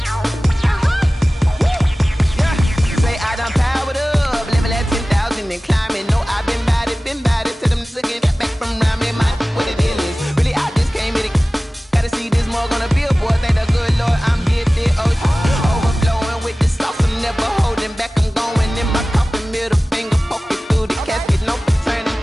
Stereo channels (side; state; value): both; normal; correlation 0.97